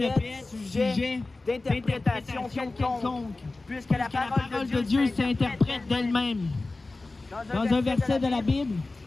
être sujet d'interprétation quelconque, puisque la parole de Dieu s'interprète d'elle-même. Dans un verset de la Bible,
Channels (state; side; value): quieter; right; 3.3 dB